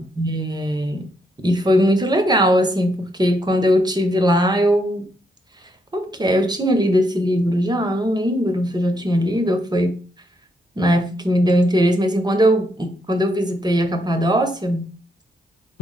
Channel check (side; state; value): both; normal; correlation 0.77